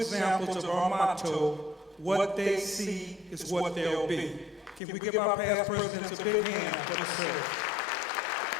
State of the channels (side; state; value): right; drops out; at 4.8 s